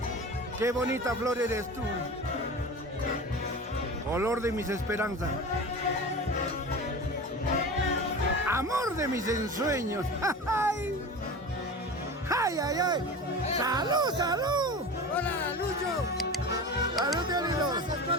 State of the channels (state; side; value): normal; both; correlation 0.31